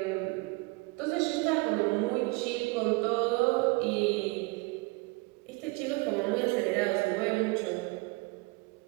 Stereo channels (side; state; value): left; quieter; 25.2 dB